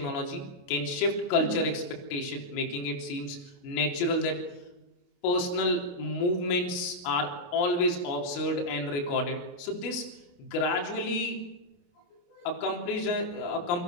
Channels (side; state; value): right; late; 28 ms